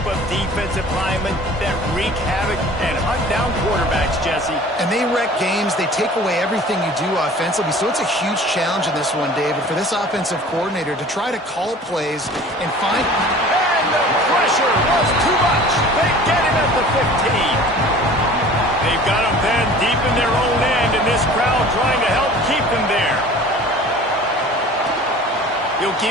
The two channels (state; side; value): normal; both; correlation 0.45